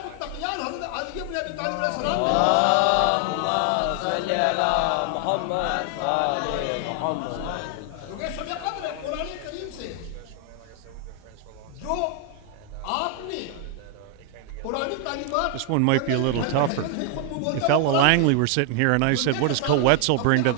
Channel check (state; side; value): different; both; correlation 0.00